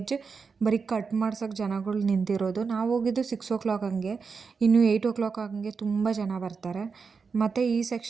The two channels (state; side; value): quieter; left; 5.2 dB